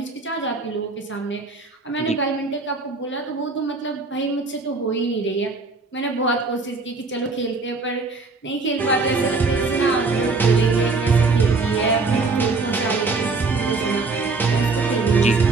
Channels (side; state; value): left; quieter; 3.9 dB